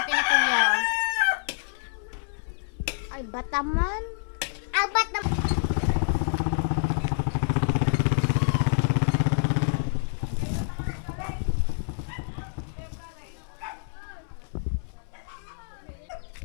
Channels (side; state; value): right; silent; 60 dB below the other